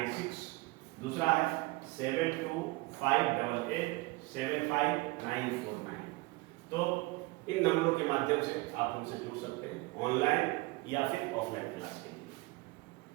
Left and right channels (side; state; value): left; quieter; 23.0 dB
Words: दूसरा है 7258875949। तो इन नंबरों के माध्यम से आप हमसे जुड़ सकते हैं, ऑनलाइन या फिर ऑफलाइन क्लास के लिए।